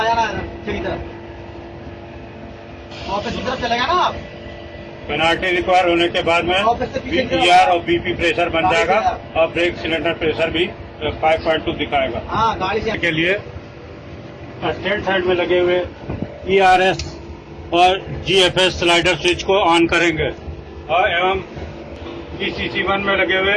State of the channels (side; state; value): both; identical; correlation 1.00